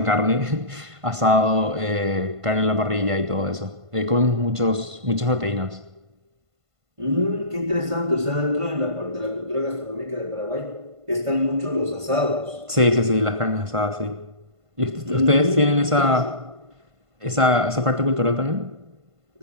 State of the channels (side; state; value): left; late; 1.5 ms